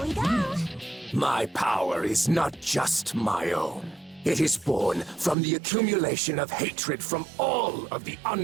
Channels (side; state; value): left; drops out; at 5.4 s